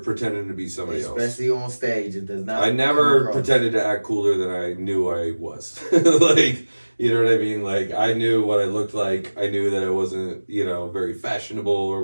to be somebody else. Especially on stage. It does not. I never pretended to act cooler than I knew I was. Like, you know what I mean? Like, I knew what I looked like. I knew that I wasn't, very fashionable or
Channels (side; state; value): both; inverted; correlation -1.00